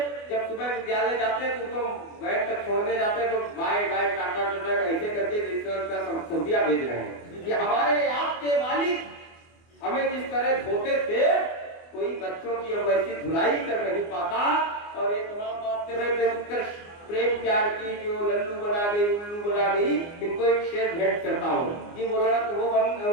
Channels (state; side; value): late; right; 24 ms